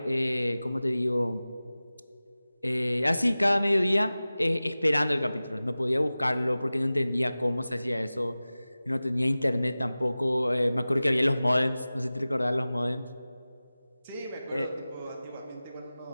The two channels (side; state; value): both; inverted; correlation -0.97